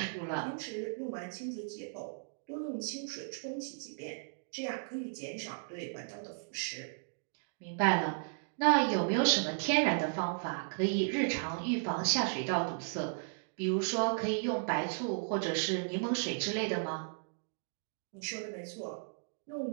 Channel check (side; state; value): left; silent; digital silence